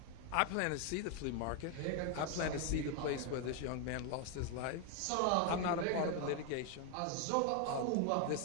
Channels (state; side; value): different; both; correlation 0.01